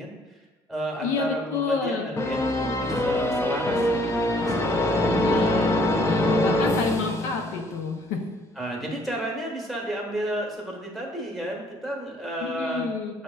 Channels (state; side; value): normal; both; correlation 0.62